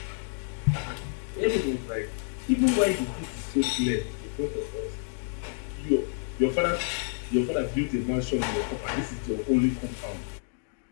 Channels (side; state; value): right; silent; 59 dB below the other